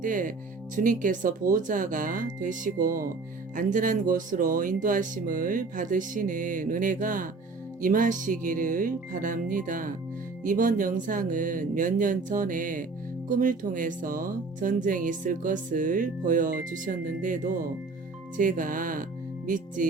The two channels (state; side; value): quieter; left; 3.9 dB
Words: 때 주님께서 보호자가 되시고 안전한 곳으로 인도하심을 받으시는 은혜가 임하시기를 바랍니다. 이번 영상은 몇 년 전에 꿈을 통해서 전쟁이 있을 것을 보여주셨는데도 제가